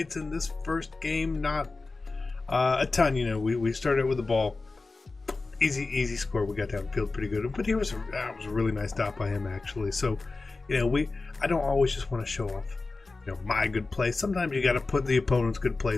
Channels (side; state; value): right; quieter; 3.7 dB